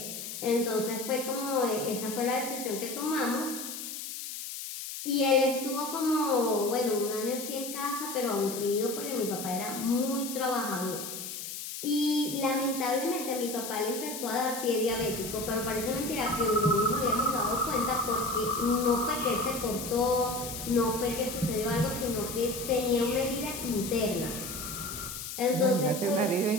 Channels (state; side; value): noise; left; hiss, 8 dB below the sound